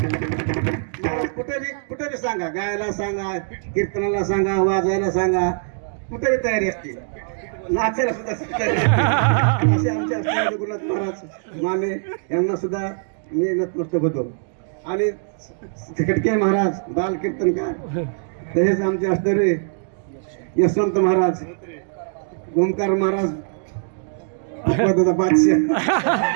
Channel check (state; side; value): silent; left; digital silence